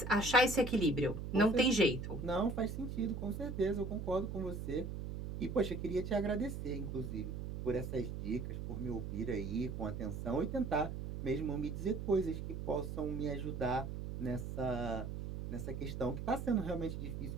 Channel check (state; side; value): noise; right; hum, 6 dB below the sound